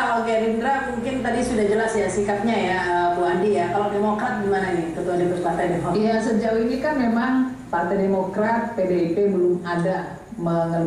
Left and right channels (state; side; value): identical; both; correlation 1.00